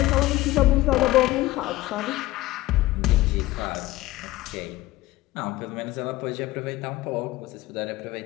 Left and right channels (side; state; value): right; quieter; 17.7 dB